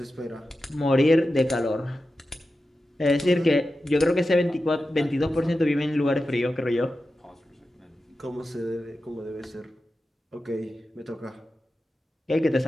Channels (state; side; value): normal; both; correlation 0.92